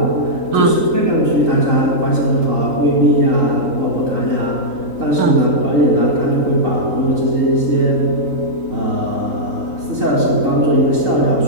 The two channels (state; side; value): late; left; 3.8 ms